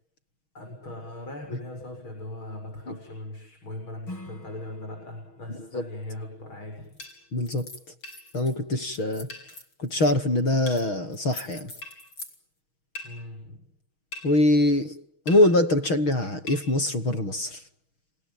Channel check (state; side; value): late; right; 6.3 ms